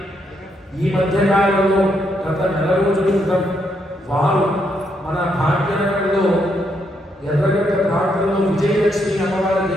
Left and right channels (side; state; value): both; normal; correlation 0.77